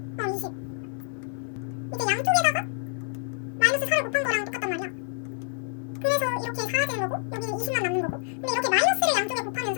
20. 이게 양쪽에다가 마이너스 4를 곱한 거랑 똑같단 말이야. 그래서 이렇게 4가 되는 거고 여기는 20만 남는 거고. 근데 이렇게 마이너스를 양쪽에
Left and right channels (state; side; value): silent; right; digital silence